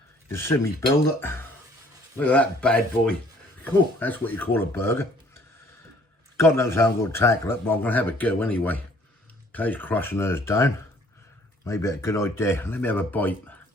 see me build it. Look at that bad boy. Cool, that's what you call a burger. God knows how I'm going to tackle it, but I'm going to have a go anyway. Kay's crushing hers down. Maybe a good idea. Let me have a bite.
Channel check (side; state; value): both; normal; correlation 0.58